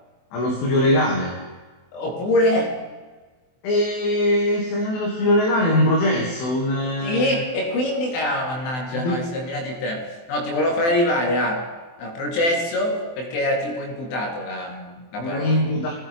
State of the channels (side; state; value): right; late; 24 ms